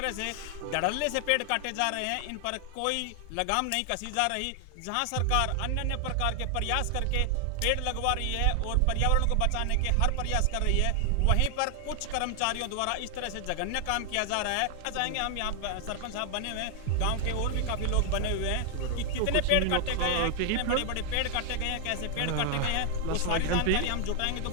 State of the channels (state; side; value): different; both; correlation 0.00